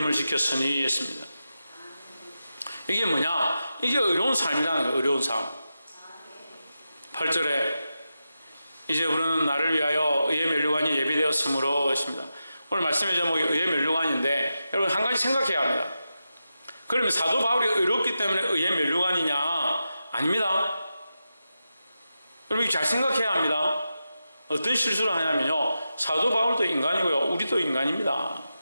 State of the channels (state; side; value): inverted; both; correlation -0.90